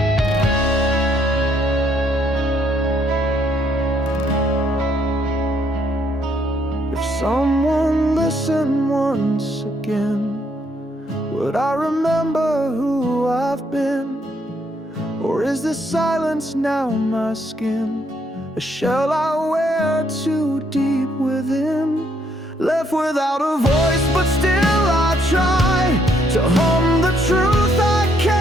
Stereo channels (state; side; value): normal; both; correlation 0.71